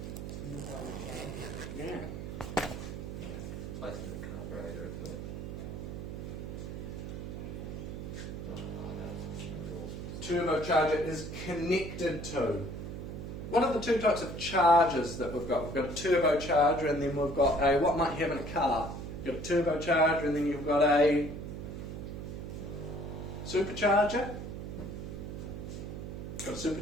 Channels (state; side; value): noise; right; hum, 7 dB below the sound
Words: Yeah. Placed in the carburetor, isn't it? Turbocharger is connected to. What are the two types of charges that we've got? We've got a turbocharger, and then we've got a, what might you have in a car? You've got a turbocharger, and then you've got a supercharger. You've got a